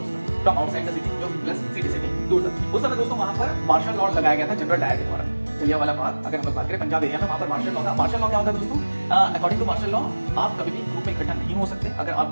था फ्रॉम आउटसाइड द सिटी, जो प्लस सिटी से भी दूर था। उस समय दोस्तों वहां पर मार्शल लॉ लगाया गया था जनरल डायर के द्वारा। जलियांवाला बाग अगर हम लोग बात करें पंजाब एरिया में, वहां पर मार्शल लॉ था। मार्शल लॉ क्या होता है दोस्तों, अकॉर्डिंग टू मार्शल लॉ आप कभी भी ग्रुप में इकट्ठा नहीं हो सकते। अगर आप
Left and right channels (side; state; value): both; inverted; correlation -1.00